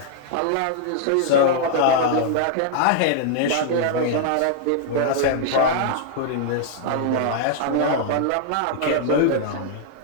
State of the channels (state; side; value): different; both; correlation -0.01